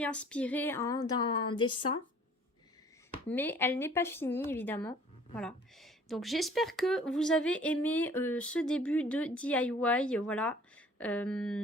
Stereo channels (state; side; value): normal; both; correlation 0.53